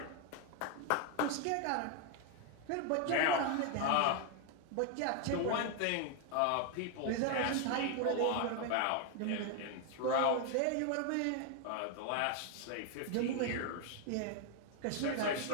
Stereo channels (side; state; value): both; different; correlation 0.01